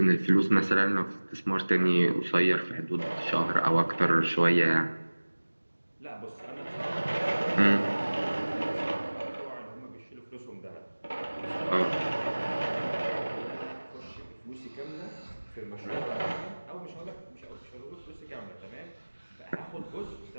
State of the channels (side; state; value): both; inverted; correlation -1.00